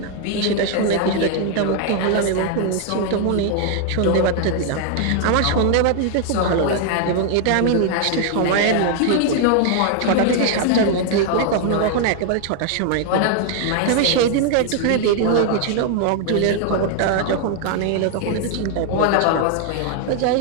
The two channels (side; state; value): both; different; correlation 0.00